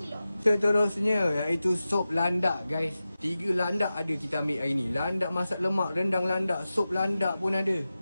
Seterusnya iaitu sop landak guys. 3 landak ada kita ambil hari ni. Landak masak lemak, rendang landak, sop landak pun ada.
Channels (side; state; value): both; inverted; correlation -0.94